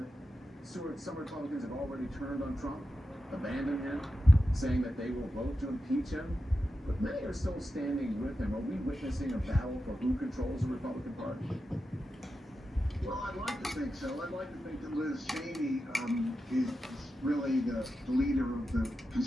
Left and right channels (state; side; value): normal; both; correlation 0.90